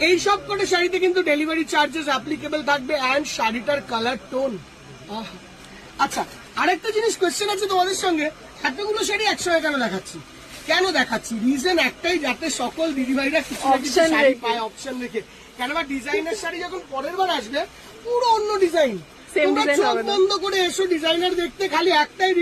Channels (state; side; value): identical; both; correlation 1.00